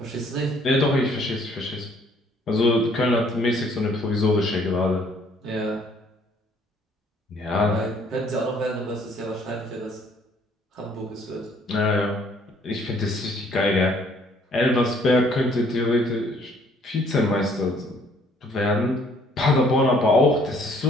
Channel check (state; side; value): normal; both; correlation 0.61